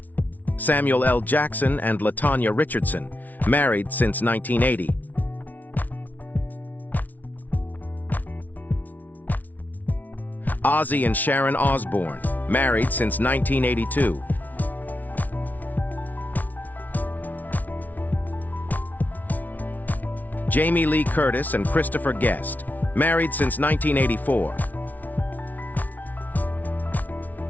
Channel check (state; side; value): late; right; 0.078 ms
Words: Samuel L. Jackson and LaTanya Richardson, married since 1980. Ozzy and Sharon Osbourne, married since 1982. Jamie Lee Curtis and Christopher Guest, married since 1984.